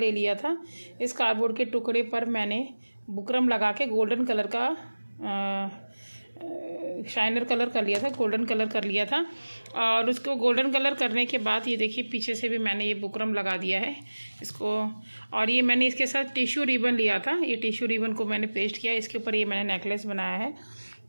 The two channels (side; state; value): both; inverted; correlation -1.00